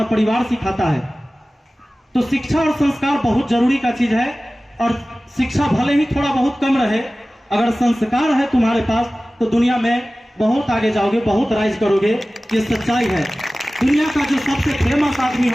परिवार सिखाता है। तो शिक्षा और संस्कार बहुत जरूरी का चीज है। और शिक्षा भले ही थोड़ा बहुत कम रहे, अगर संस्कार है तुम्हारे पास तो दुनिया में बहुत आगे जाओगे, बहुत राइज करोगे। ये सच्चाई है। दुनिया का जो सबसे फेमस आदमी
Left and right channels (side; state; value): both; normal; correlation 0.97